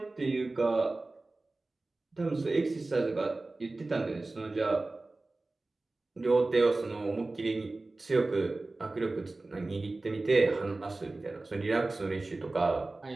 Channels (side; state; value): left; quieter; 3.2 dB